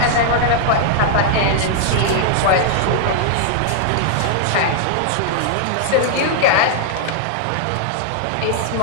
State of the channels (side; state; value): both; different; correlation -0.01